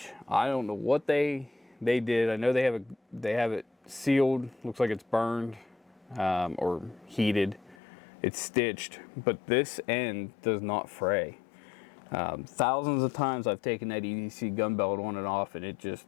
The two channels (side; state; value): right; drops out; at 7.8 s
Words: I don't know what they did. I know they have it sealed. Looks like it's burned or heated. It's stitched, but this end does not fray. Thousands of times I've taken that EDC gun belt on and off, and it just,